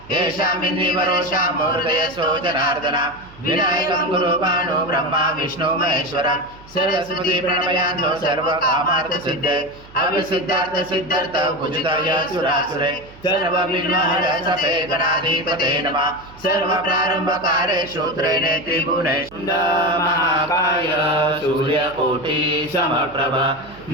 येषाम् इन्द्रिवरोषां हृदयस्थो जनार्दन विनायकं गुरु भानु ब्रह्मा विष्णु महेश्वरं सरस्वती प्रणमयान्तो सर्वकामार्थसिद्धे अविसिद्धार्थ सिद्धार्थ भुजगाय सुरासुरे सर्वविघ्नहरसपे गणाधिपते नमः सर्वप्रारम्भकारेषु त्रिने त्रिभुवने महाकाय सूर्यकोटि समप्रभ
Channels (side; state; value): right; noise; hum, 22 dB below the sound